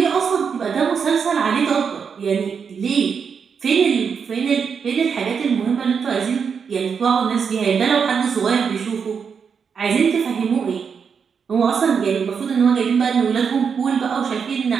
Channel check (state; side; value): quieter; left; 6.4 dB